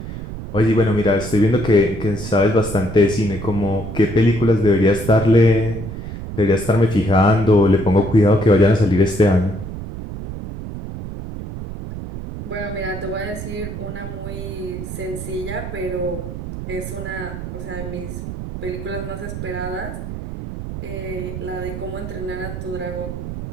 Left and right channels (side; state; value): right; noise; rumble, 8 dB below the sound